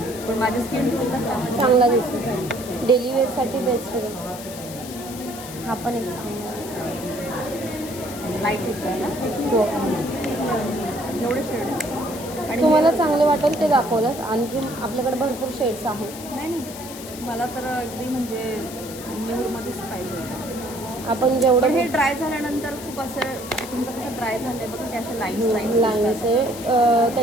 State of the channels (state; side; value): noise; left; hiss, 13 dB below the sound